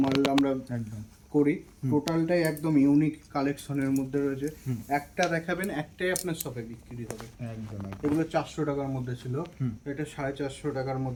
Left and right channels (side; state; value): both; identical; correlation 1.00